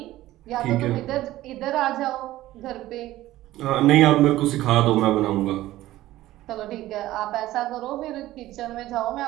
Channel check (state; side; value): quieter; left; 15.7 dB